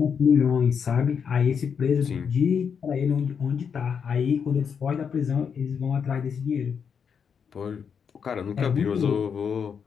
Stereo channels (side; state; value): right; quieter; 6.8 dB